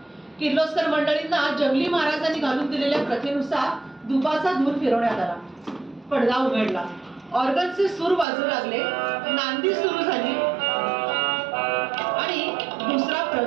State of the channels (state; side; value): drops out; left; at 8.2 s